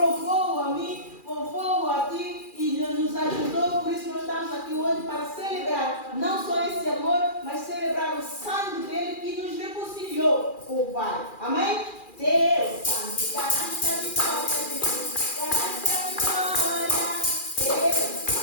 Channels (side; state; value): right; late; 2.4 ms